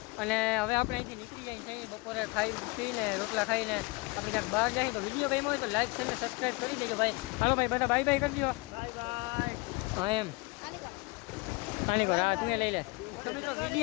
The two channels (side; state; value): right; quieter; 26.2 dB